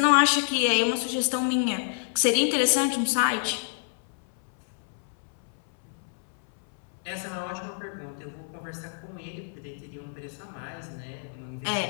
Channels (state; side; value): silent; right; 59 dB below the other